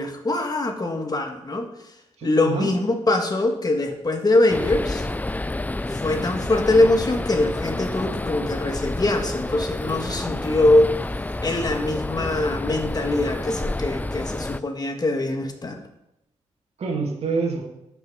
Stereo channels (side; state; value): both; normal; correlation 0.80